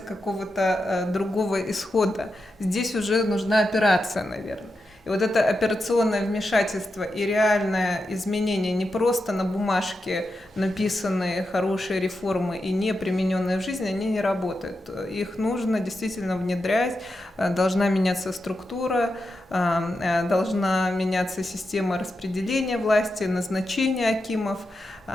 какого-то другого исхода. Здесь уже нужна операция, наверное. И вот это операционное вмешательство и реальное изменение, не просто на бумажке написанные хорошие реформы и не примененные в жизни, они не работают. Их нужно действительно внедрять, должна меняться структура, должна меняться система распределения власти, назначения акимов,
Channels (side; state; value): both; normal; correlation 0.88